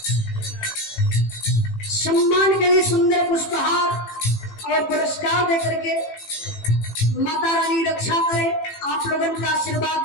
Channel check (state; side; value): late; right; 18 ms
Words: सम्मान के लिए सुंदर पुष्पहार और पुरस्कार देकर के माता रानी रक्षा करे, आप लोगों का